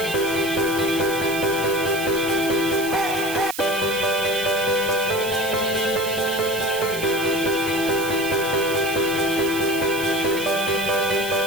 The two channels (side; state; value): right; noise; hiss, 9 dB below the sound